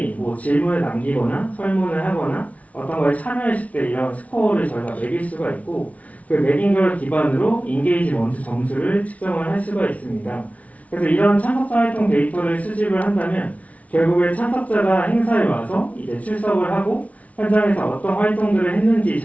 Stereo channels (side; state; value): right; late; 0.068 ms